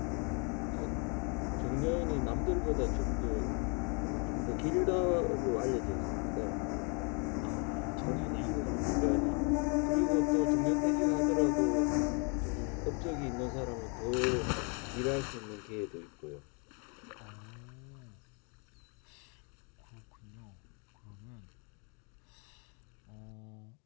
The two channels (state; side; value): quieter; right; 35.5 dB